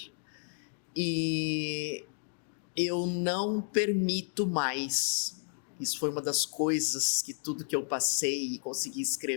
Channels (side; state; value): right; silent; 56 dB below the other